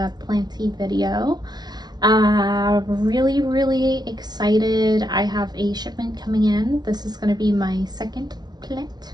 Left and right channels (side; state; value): left; late; 0.19 ms